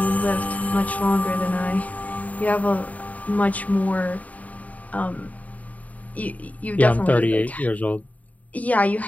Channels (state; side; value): late; right; 0.072 ms